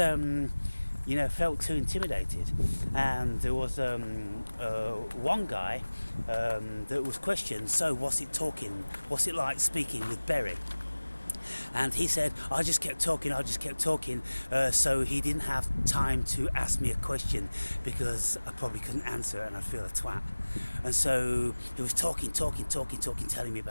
too intimidated. And there was one guy that was questioned, so what's it like speaking with Berry? And he said, I just kept talking, so he didn't have time to ask me a question because I probably couldn't answer it and I'd feel a twat. And so he was talking, telling me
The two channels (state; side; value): inverted; both; correlation -1.00